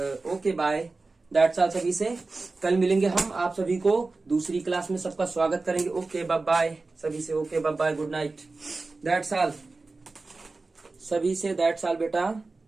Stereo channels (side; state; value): left; quieter; 3.6 dB